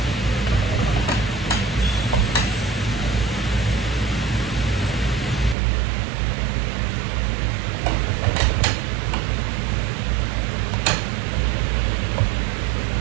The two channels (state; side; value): drops out; left; at 5.6 s